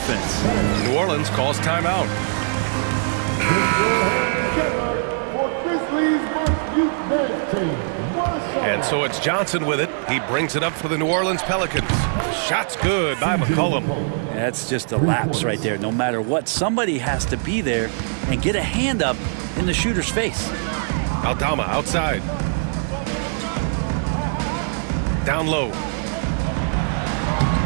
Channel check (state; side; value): silent; left; 64 dB below the other